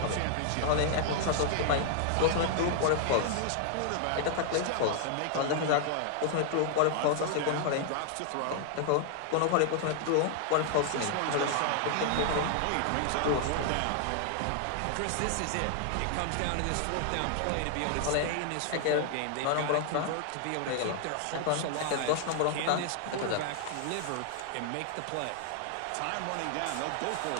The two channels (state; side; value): different; both; correlation 0.00